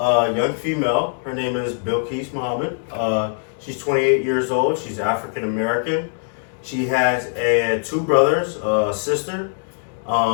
young female. Her name is Bilquis Muhammad. She's 28 years old. She's African American. She has two brothers, a sister.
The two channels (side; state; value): right; silent; digital silence